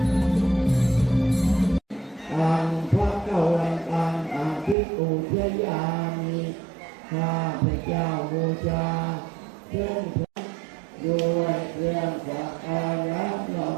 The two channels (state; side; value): drops out; left; at 4.8 s